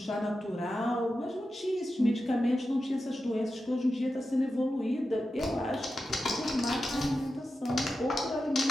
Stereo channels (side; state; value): both; normal; correlation 0.91